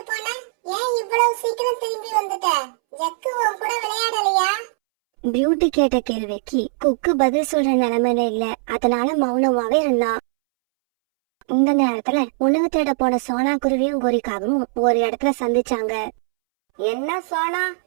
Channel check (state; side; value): silent; left; 65 dB below the other